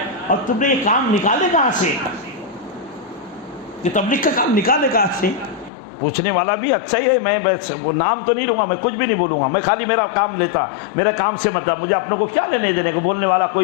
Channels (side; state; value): right; drops out; at 5.7 s